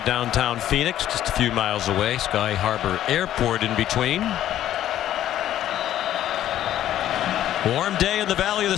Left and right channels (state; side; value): quieter; right; 12.1 dB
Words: downtown Phoenix, just a few miles away. Sky Harbor Airport in between. Warm day in the Valley of the